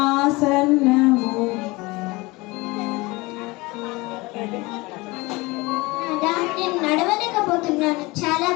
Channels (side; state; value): right; quieter; 23.2 dB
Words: నాదా, నేను నడవలేకపోతున్నాను, చాలా